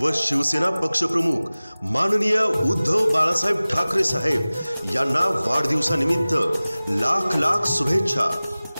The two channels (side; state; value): both; inverted; correlation -0.99